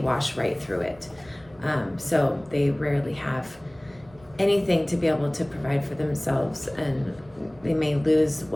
right through it. So they rarely have anything to be able to provide for themselves, and they may lose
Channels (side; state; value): right; noise; rumble, 26 dB below the sound